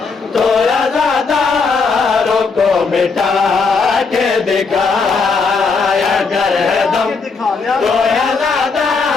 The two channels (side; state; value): right; quieter; 4.7 dB